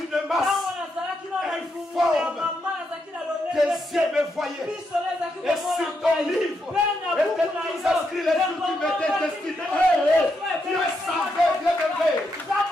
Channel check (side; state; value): both; normal; correlation 0.81